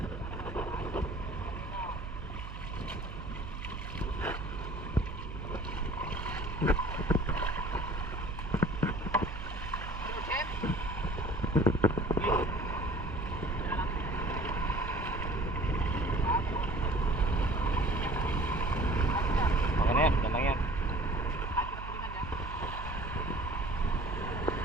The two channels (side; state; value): right; noise; hum, 9 dB below the sound